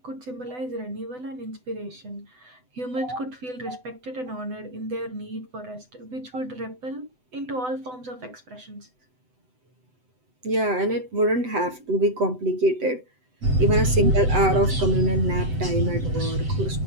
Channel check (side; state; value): left; late; 7.9 ms